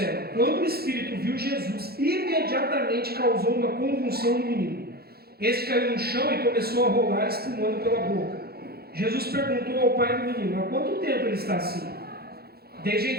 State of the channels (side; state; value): left; late; 0.46 ms